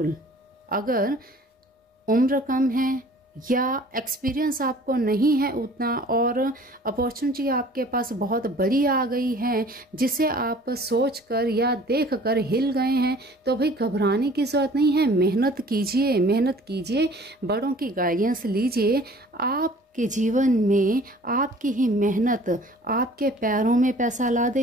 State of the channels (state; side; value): normal; both; correlation 0.50